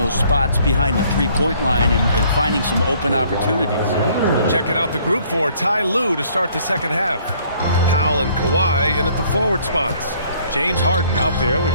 spots behind the three-point line and finding some open opportunities. Checking out the group for Ty Lue to start the second half. Powell and Kawhi in at the forward spots. James Harden out there with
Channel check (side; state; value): both; inverted; correlation -0.60